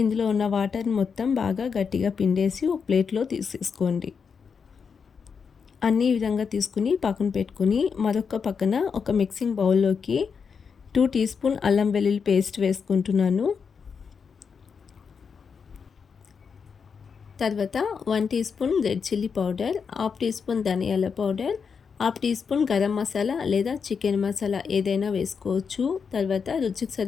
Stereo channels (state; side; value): quieter; right; 6.0 dB